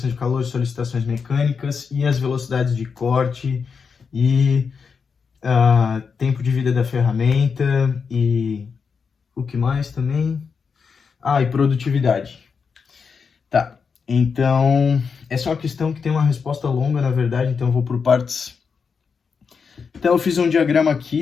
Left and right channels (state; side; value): quieter; right; 5.7 dB